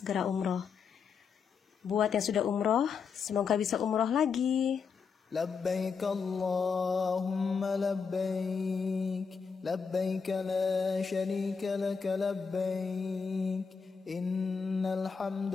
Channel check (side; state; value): right; quieter; 5.8 dB